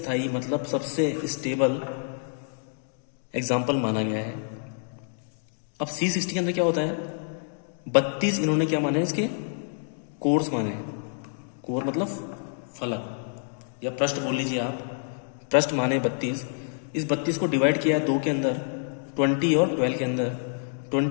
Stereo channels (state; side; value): silent; right; digital silence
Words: मतलब सबसे स्टेबल एग्जाम्पल माना गया है। अब C60 के अंदर क्या होता है? 32 इन्होंने क्या माने? इसके कोर्स माने। कोर मतलब फलक या पृष्ठ बोल लीजिए आप, पृष्ठ माने 32। इस 32 को डिवाइड किया है 2 के अंदर, 20 और 12 के अंदर।